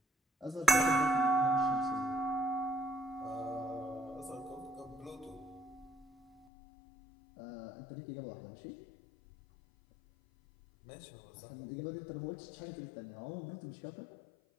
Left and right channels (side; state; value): right; drops out; at 6.5 s